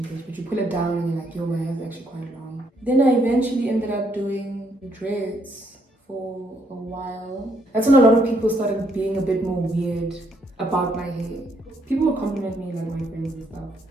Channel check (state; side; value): normal; both; correlation 0.72